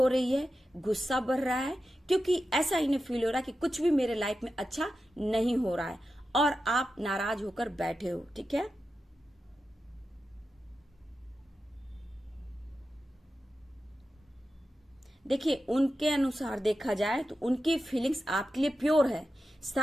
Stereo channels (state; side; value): normal; both; correlation 0.91